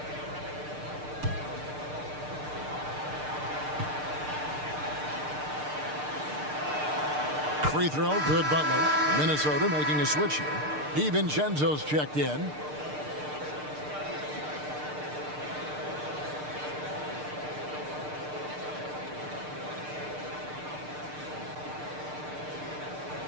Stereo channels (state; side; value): late; left; 6.6 ms